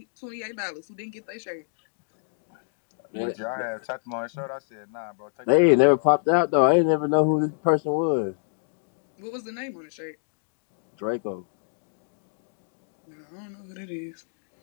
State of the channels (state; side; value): silent; right; digital silence